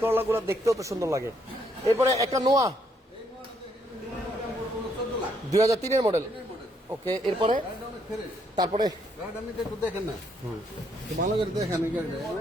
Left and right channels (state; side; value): normal; both; correlation 0.72